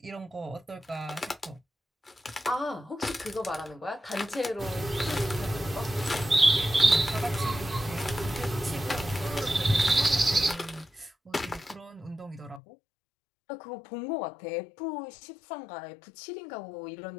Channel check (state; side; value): drops out; right; at 12.6 s